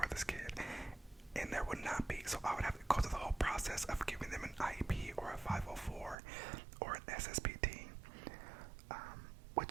this kid, and there would not be, so I would have to go through the whole process of giving them an IEP or a 504 or an SSPT,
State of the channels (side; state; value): left; drops out; at 6.2 s